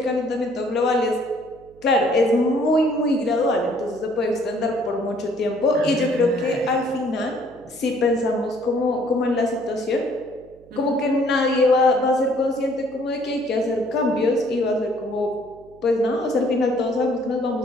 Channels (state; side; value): noise; right; hum, 26 dB below the sound